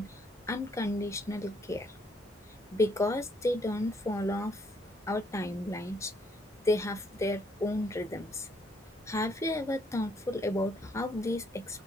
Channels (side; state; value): both; normal; correlation 0.69